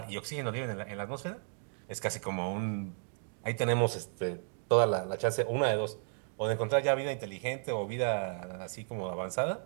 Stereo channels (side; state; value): left; silent; 55 dB below the other